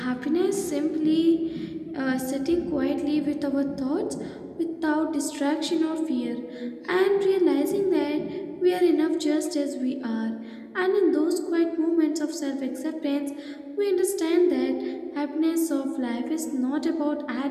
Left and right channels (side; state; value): both; identical; correlation 1.00